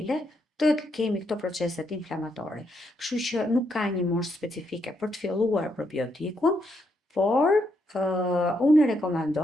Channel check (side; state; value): both; normal; correlation 0.78